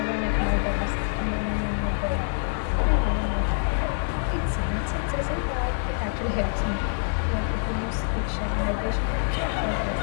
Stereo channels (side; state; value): right; silent; digital silence